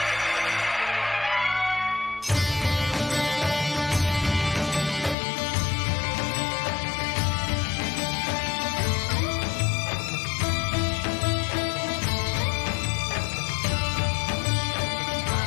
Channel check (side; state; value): right; drops out; at 5.2 s